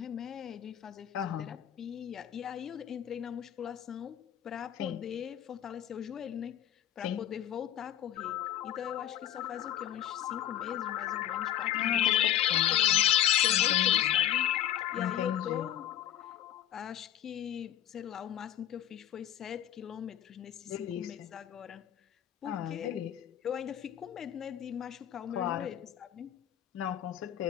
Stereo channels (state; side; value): quieter; right; 11.6 dB